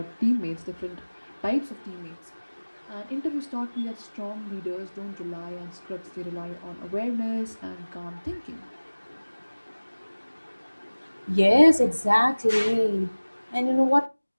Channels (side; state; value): both; inverted; correlation -1.00